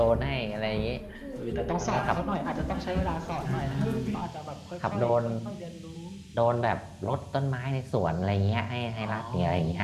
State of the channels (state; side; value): identical; both; correlation 1.00